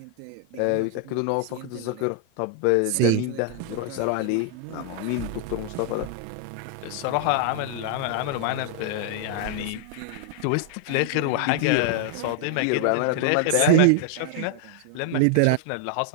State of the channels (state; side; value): different; both; correlation 0.00